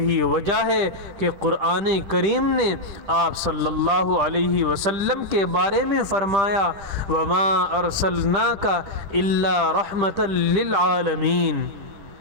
وجہ ہے کہ قرآن کریم نے آپ صلی اللہ علیہ وسلم کے بارے میں فرمایا، وَمَا أَرْسَلْنَاكَ إِلَّا رَحْمَةً لِّلْعَالَمِينَ،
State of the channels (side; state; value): left; late; 10 ms